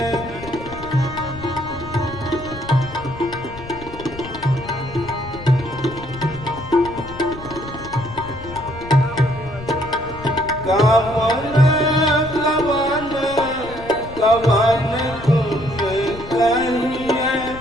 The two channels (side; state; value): left; noise; rumble, 14 dB below the sound